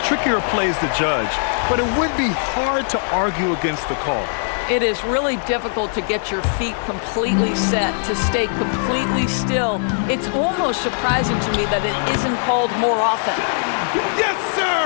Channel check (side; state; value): right; silent; 57 dB below the other